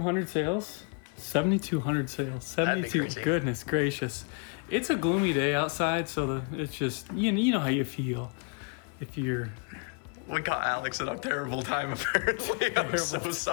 sales. 7,200 sales. That'd be 72. crazy. Goodness gracious. It's a gloomy day outside, so it's just, you know how you feel. If you're... We caught Alex at a terrible time, apparently. I'm so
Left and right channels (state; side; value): quieter; right; 36.5 dB